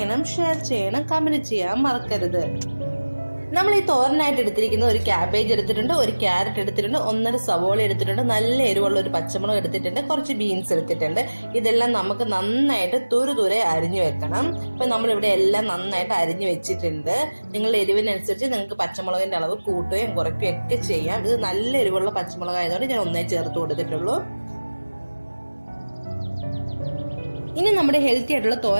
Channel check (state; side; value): inverted; both; correlation -1.00